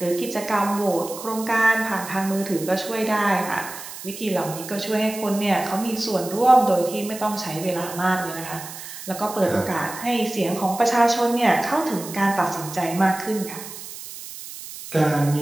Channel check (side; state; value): right; noise; hiss, 12 dB below the sound